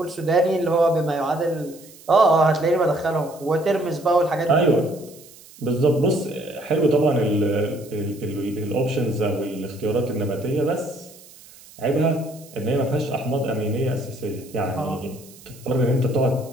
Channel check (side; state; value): right; noise; hiss, 22 dB below the sound